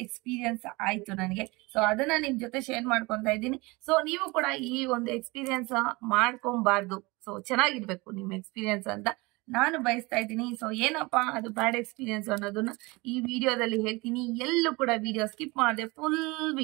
ಎಕ್ಸ್ಪೀರಿಯನ್ಸ್ ಆಯ್ತು ನನಗೆ. ಸೊ ಅದನ್ನ ನಿಮ್ ಜೊತೆ ಶೇರ್ ಮಾಡ್ಕೊಂತ ಇದ್ದೀನಿ. ಸೊ ನೀವು ಕೂಡ ಈ ಒಂದು ಎಕ್ಸ್ಪೀರಿಯನ್ಸ್ ಮಾಡ್ಕೊಬಾರ್ದು. ಸೊ ಚೆನ್ನಾಗಿರ್ಬೇಕು ನಿಮ್ ಎಕ್ಸ್ಪೀರಿಯನ್ಸ್ ಅಂತ ನಾನು ಬಯಸ್ತಾ ಇದ್ದೀನಿ. ಸೊ ಏನಪ್ಪಾ ಅದು ಬ್ಯಾಡ್ ಎಕ್ಸ್ಪೀರಿಯನ್ಸ್ ಅನ್ನೋದನ್ನ ಈ ವಿಡಿಯೋದಲ್ಲಿ ಹೇಳ್ತೀನಿ. ಎಲ್ಲೂ ಕೂಡ ವಿಡಿಯೋ ಸ್ಕಿಪ್ ಮಾಡದೆ ಫುಲ್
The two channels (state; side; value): quieter; left; 24.3 dB